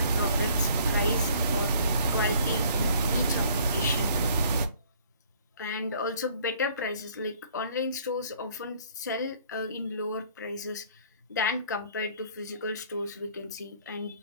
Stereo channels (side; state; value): both; inverted; correlation -0.57